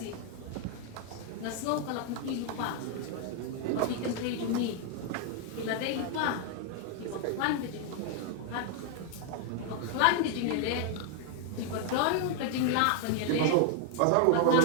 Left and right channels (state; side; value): different; both; correlation 0.00